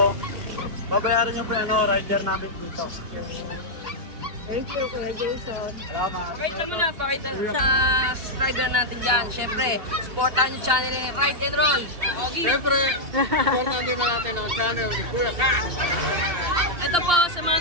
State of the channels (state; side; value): late; left; 2.8 ms